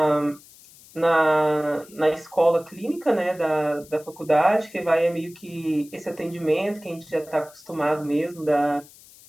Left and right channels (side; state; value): left; noise; hiss, 23 dB below the sound